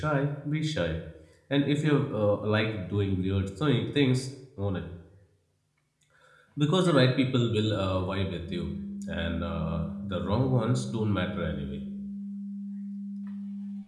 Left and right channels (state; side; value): identical; both; correlation 1.00